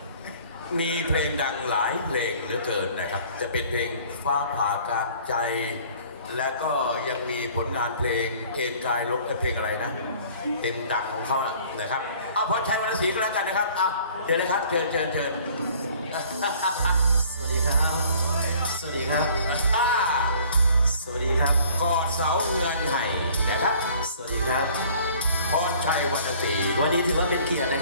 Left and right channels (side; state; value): both; inverted; correlation -0.53